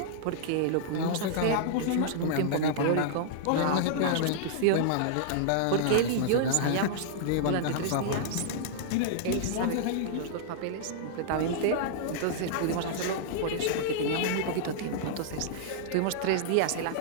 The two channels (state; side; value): different; both; correlation -0.01